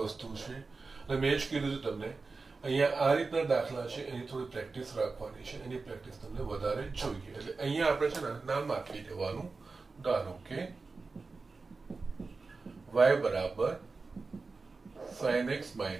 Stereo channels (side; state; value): left; quieter; 4.1 dB